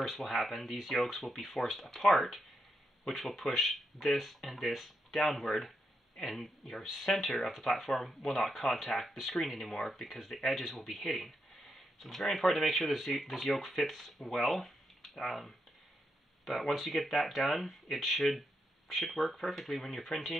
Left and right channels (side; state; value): both; normal; correlation 0.82